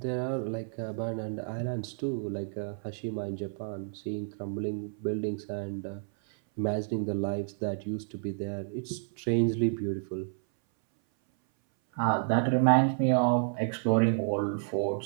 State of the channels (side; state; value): left; silent; 58 dB below the other